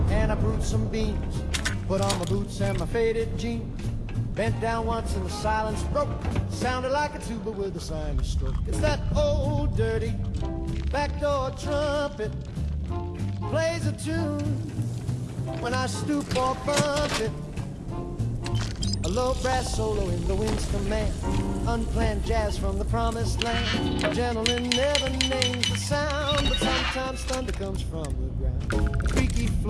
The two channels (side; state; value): both; identical; correlation 1.00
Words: and I brewed some beans. Put on my boots and my faded jeans. Bent down once and the silence broke. Sounded like a tuba with a sinus stroke. It's that old dirty backdoor trumpet. Plays a tune when I stoop or bump it. A low brass solo in the wind's command. Unplanned jazz from the promised land. A gentleman never names the sound, but sometimes thunder comes from the ground. A creaky